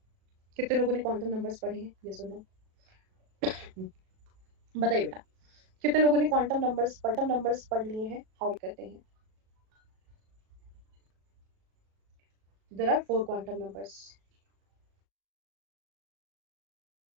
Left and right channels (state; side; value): late; left; 37 ms